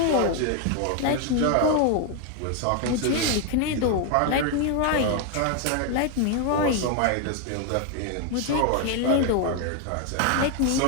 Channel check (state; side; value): different; both; correlation 0.01